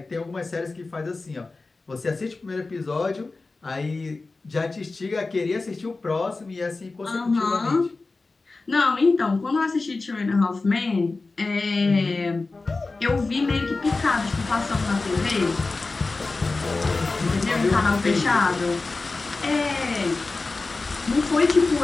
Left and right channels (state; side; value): quieter; right; 3.6 dB